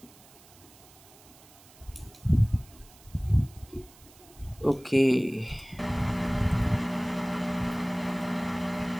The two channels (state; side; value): noise; right; hiss, 24 dB below the sound